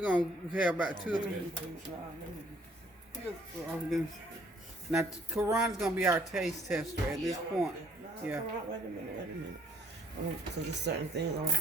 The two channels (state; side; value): normal; both; correlation 0.63